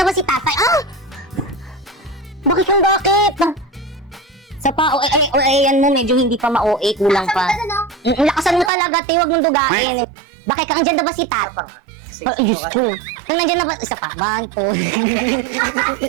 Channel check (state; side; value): drops out; left; at 8.7 s